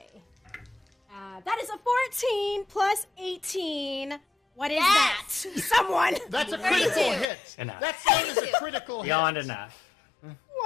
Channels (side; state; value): right; drops out; at 7.2 s